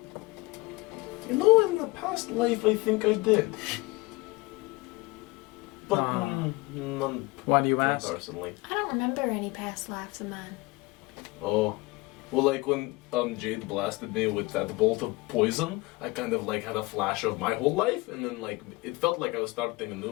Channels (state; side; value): quieter; right; 23.3 dB